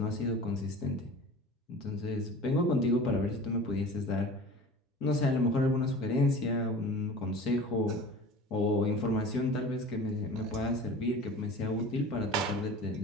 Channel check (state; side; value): normal; both; correlation 0.39